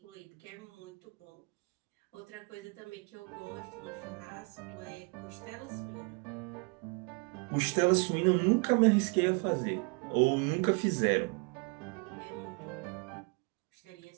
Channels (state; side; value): quieter; left; 33.5 dB